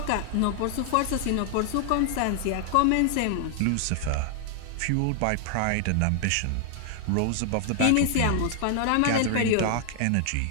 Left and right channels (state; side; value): different; both; correlation 0.00